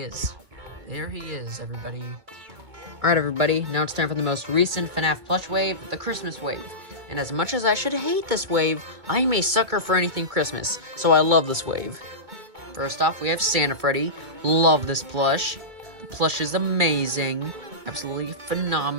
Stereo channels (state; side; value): late; left; 2.2 ms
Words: is. There he is, everybody. Alright everybody, now it's time for the most recent Fnaf plush wave, the Christmas wave. And as much as I should hate this wave, I am a sucker for anything Christmas, so I love this wave. First off, we have Santa Freddy. Love this plush. The plush is amazing. Absolutely